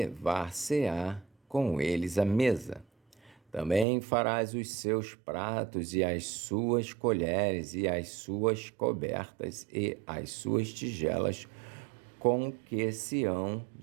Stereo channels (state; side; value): drops out; left; at 3.9 s